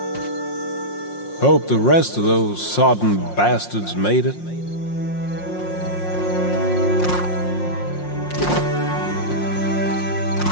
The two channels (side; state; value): right; late; 5.6 ms